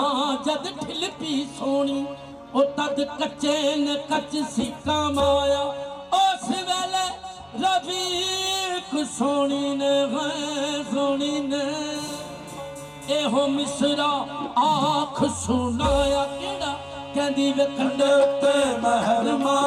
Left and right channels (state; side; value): identical; both; correlation 1.00